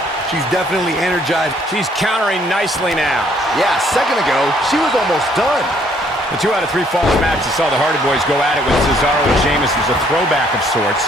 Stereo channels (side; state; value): both; normal; correlation 0.65